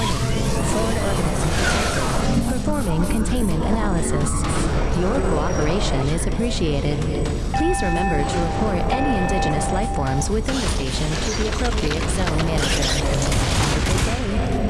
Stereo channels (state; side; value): identical; both; correlation 1.00